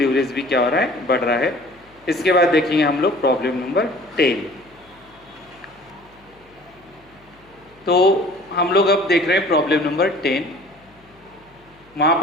भी क्या हो रहा है, बढ़ रहा है। इसके बाद देखेंगे हम लोग प्रॉब्लम नंबर 10। तो हम लोग अब देख रहे हैं प्रॉब्लम नंबर 10। वहां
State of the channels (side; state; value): left; noise; hum, 30 dB below the sound